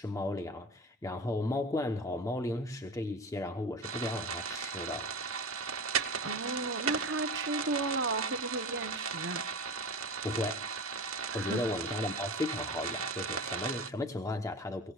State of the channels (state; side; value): normal; both; correlation 0.29